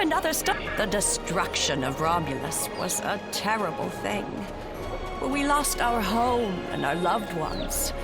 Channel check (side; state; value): both; identical; correlation 1.00